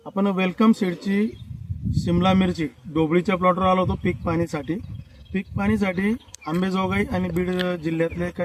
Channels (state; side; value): identical; both; correlation 1.00